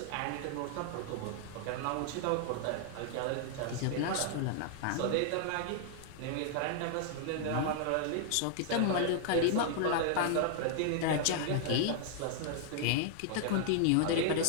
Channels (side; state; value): both; different; correlation 0.00